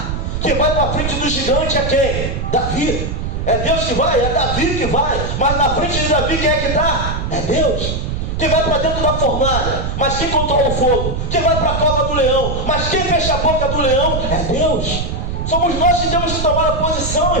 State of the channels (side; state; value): right; noise; rumble, 3 dB below the sound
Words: Quem vai para frente do gigante é quem? Davi. É Deus que vai? É Davi que vai. Mas na frente de Davi quem é que está? É Deus. Quem vai para dentro da fornalha? Mas quem controla o fogo? Quem vai para a cova do leão? Mas quem fecha a boca do leão? É Deus. Somos nós que temos que tomar a posição,